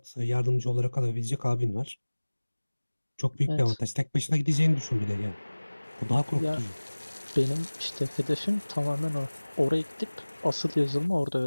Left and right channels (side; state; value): both; inverted; correlation -1.00